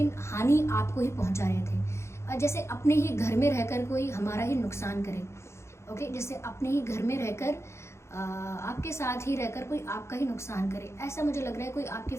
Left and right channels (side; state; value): right; late; 0.13 ms